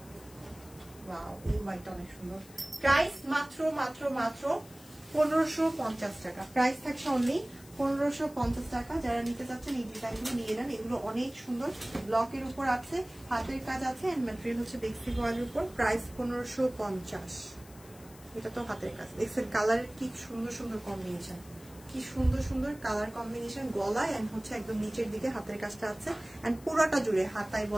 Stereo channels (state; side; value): noise; left; hiss, 22 dB below the sound